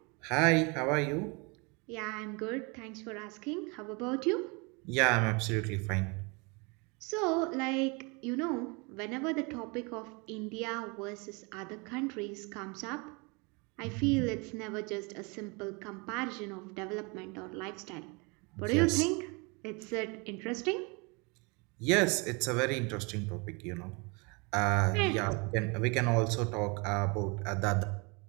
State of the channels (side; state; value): left; quieter; 29.8 dB